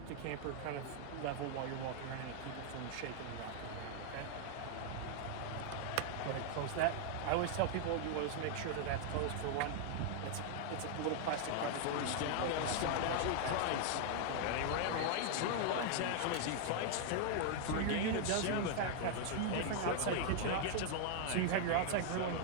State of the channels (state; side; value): different; both; correlation 0.00